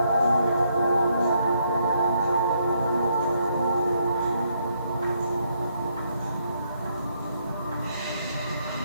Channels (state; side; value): inverted; both; correlation -0.74